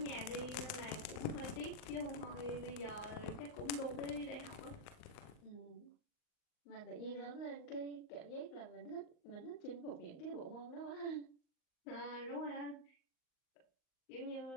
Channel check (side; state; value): right; late; 39 ms